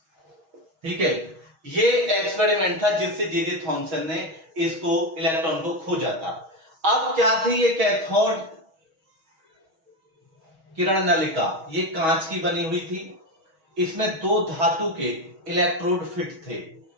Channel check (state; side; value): late; left; 6.3 ms